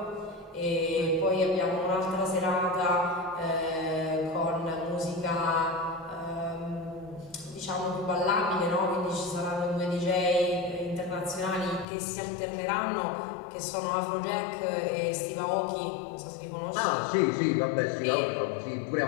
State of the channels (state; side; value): drops out; right; at 11.9 s